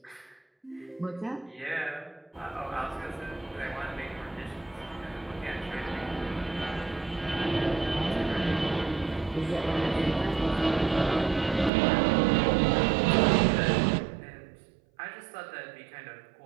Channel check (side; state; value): left; drops out; at 11.7 s